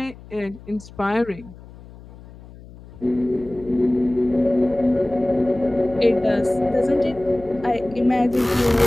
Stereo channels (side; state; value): left; noise; hum, 19 dB below the sound